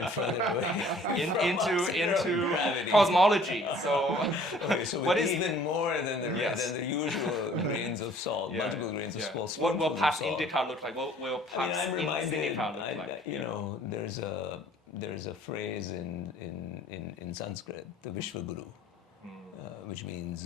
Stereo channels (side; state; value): both; normal; correlation 0.55